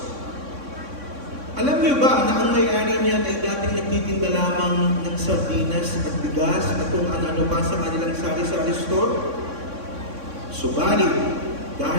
Alam niyo ba na ang may-ari niyan ay dating nagtitinda lamang ng sardinas at bigas at kung ano-ano pa sa kanilang sari-sari store? Subalit,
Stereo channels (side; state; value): left; late; 3.6 ms